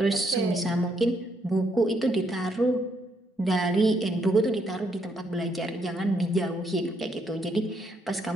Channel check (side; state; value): both; normal; correlation 0.74